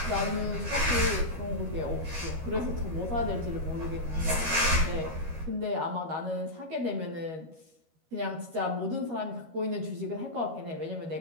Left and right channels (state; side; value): late; left; 13 ms